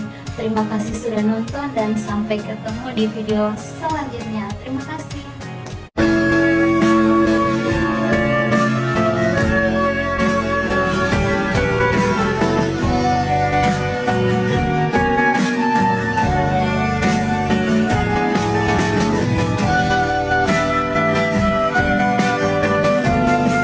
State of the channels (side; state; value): both; identical; correlation 1.00